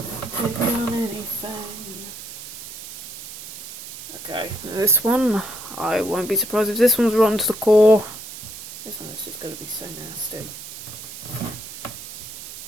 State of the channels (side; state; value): right; noise; hiss, 11 dB below the sound